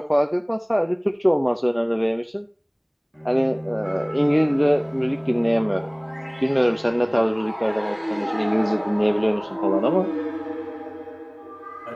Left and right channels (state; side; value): identical; both; correlation 1.00